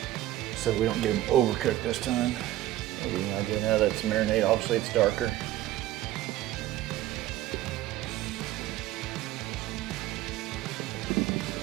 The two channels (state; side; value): quieter; left; 14.4 dB